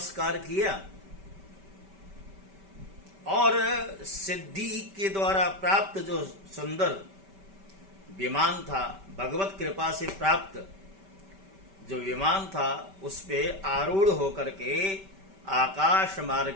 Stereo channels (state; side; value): late; left; 5.2 ms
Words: किया और सिद्धि के द्वारा प्राप्त जो सुंदर विमान था, भगवत कृपा से प्राप्त जो विमान था, उस पे आरूढ़ होकर के आकाश